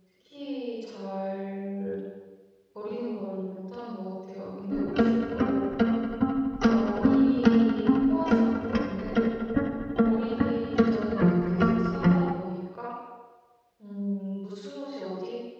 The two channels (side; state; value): both; identical; correlation 1.00